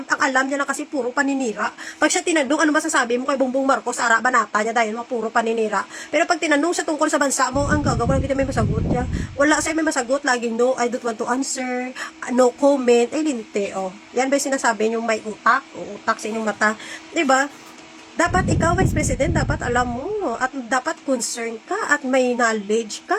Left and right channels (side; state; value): both; identical; correlation 1.00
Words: ang alam niya lang kasi puro paninira. Pag siya tinanong, ano masasabi mo kay Bongbong Marcos, ara banata niya dahil mga puro paninira. Pero pag tinanong siya tungkol sa bansa mo, ang gagawin, hindi may masagot niya. Wala siya may masagot, laging no, I don't want to answer, no comment, ay linte, oh. Yan ba yung sinasabi niyo may utak, o utak sa inyong mata, diba? Dapat ikaw, Vice President, dapat alam mo at dapat concern ka at may knowledge